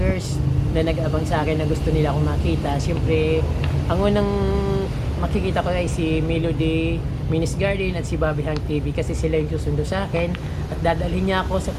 na nag-abang sa akin na gusto nila akong makita. Siyempre, ang unang makikita ko ay si Melody Minis Garden at si Bobby Hank TV kasi sila yung susundo sa akin at dadalhin niya ako sa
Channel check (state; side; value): identical; both; correlation 1.00